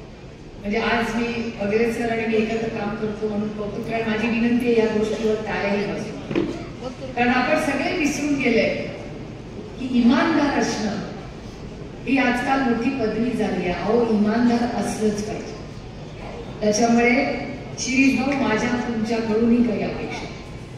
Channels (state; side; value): identical; both; correlation 1.00